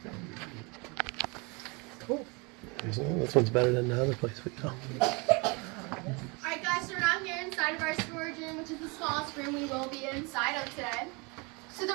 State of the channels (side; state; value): left; quieter; 29.4 dB